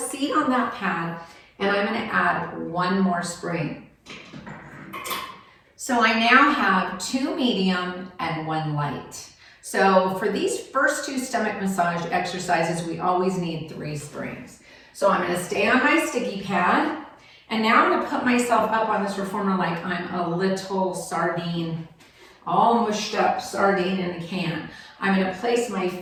on that pad, and I'm going to add 1 more spring. So I now have 2 medium and 1 light. So for these first 2 stomach massage exercises, we always need 3 springs. So I'm going to stay on my sticky pad, and now I'm going to put myself up on this reformer like I'm a little sardine, all mushed up sardine in a can. I'm going to place my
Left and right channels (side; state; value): both; identical; correlation 1.00